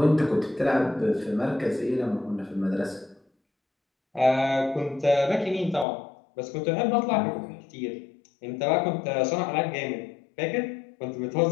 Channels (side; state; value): right; drops out; at 5.9 s